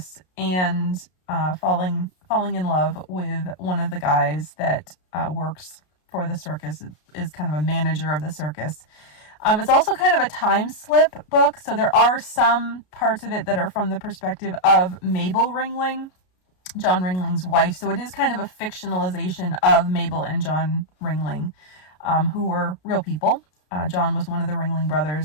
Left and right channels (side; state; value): right; late; 33 ms